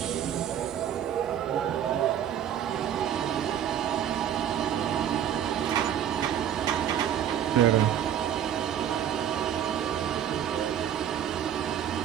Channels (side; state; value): left; quieter; 9.9 dB